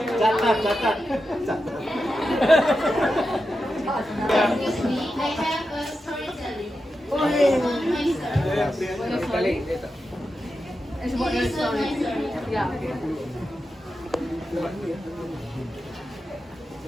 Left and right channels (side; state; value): both; normal; correlation 0.89